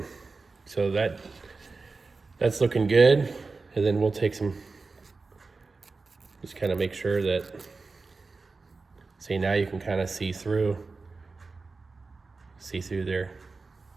So that's looking good. And then we'll take some, just kind of make sure that, see, now you can kind of see through there.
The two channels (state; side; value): quieter; left; 4.0 dB